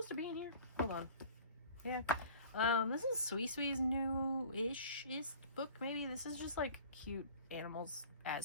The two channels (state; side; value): inverted; both; correlation -0.46